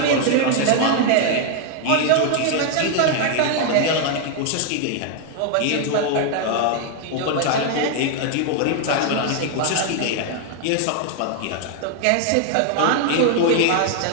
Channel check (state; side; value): different; both; correlation 0.00